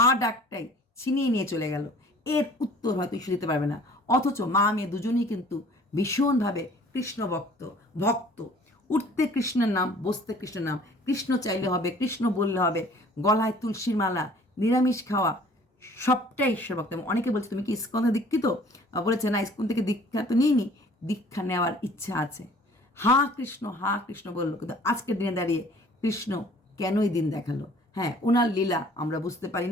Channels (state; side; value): normal; both; correlation 0.52